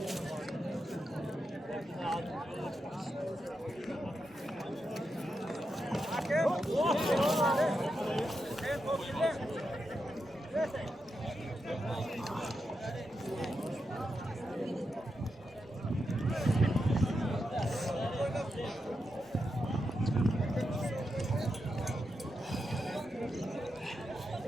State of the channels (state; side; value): normal; both; correlation 0.86